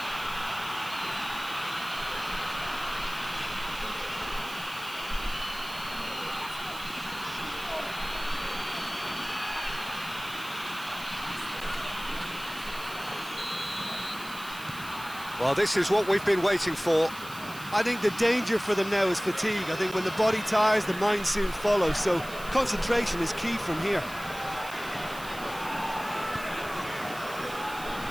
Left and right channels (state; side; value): noise; right; hiss, 15 dB below the sound